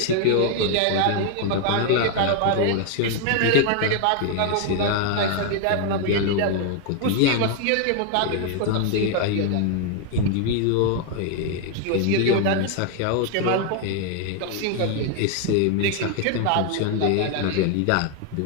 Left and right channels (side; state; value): both; different; correlation 0.00